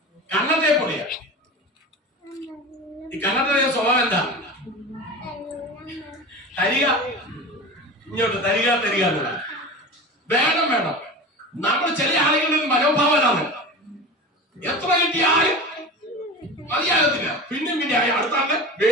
കണ്ണത്തെ പൊടിയാ. ഈ കണ്ണത്തെ സ്വഭാവം എന്താ? തരിക, ഇങ്ങോട്ട് തരിക തരിക എന്നുള്ള വേണം വേണം. നമ്മൾ ചില ആളുകളുടെ മനോഭാവനാണ്. എത്ര കിട്ടിയാലും മതിയാകത്തില്ല. പിന്നെ അടുത്ത ആളുടെ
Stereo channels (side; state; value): both; normal; correlation 0.31